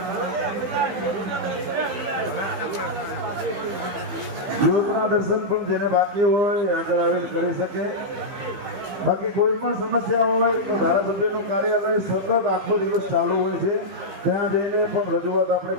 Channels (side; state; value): left; late; 15 ms